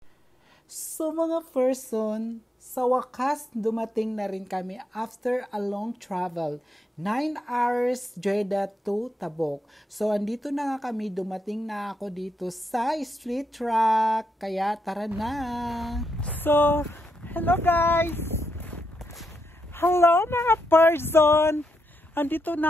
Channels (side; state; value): both; normal; correlation 0.81